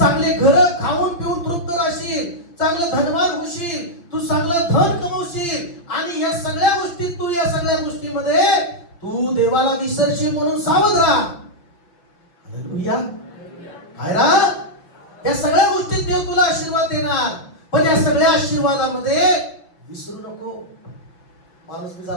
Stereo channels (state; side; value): late; right; 5.9 ms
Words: घर खाऊन पिऊन तृप्त राहशील, चांगलं धनवान होशील, तू चांगलं धन कमवशील आणि या सगळ्या गोष्टीत तू, या सगळ्या गोष्टीमध्ये तू देवाला विसरशील म्हणून सावध राहा. हालेलुया. काय रा? या सगळ्या गोष्टीत देव तुला आशीर्वाद देणार, पण या सगळ्या आशीर्वादामध्ये विसरू नको. माणूस मी